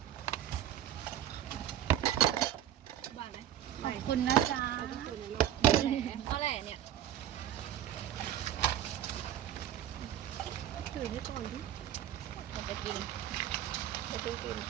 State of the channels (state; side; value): quieter; left; 11.2 dB